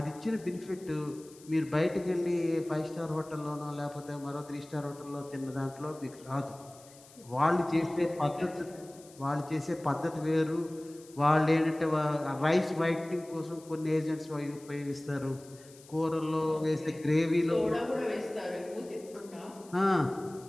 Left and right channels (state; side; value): noise; left; hiss, 23 dB below the sound